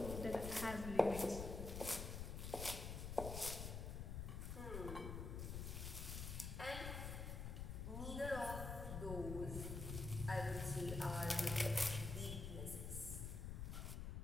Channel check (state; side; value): noise; left; rumble, 4 dB below the sound